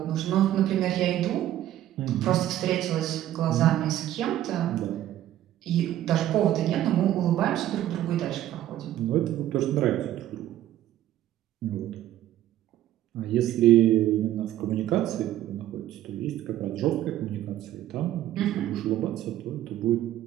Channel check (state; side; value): quieter; left; 12.9 dB